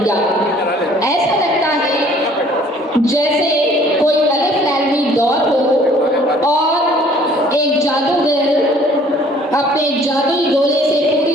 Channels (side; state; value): both; normal; correlation 0.56